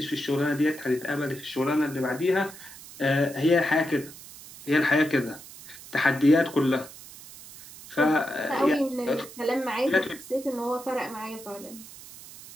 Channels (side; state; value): right; noise; hiss, 17 dB below the sound